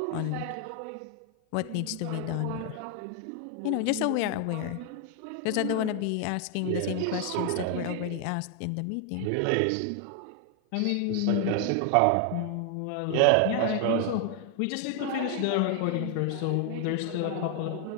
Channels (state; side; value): different; both; correlation 0.00